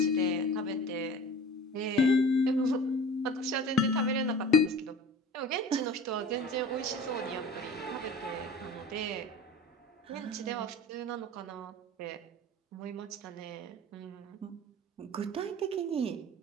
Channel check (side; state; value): both; normal; correlation 0.41